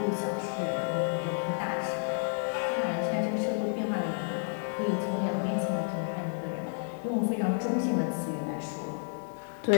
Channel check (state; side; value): silent; right; 57 dB below the other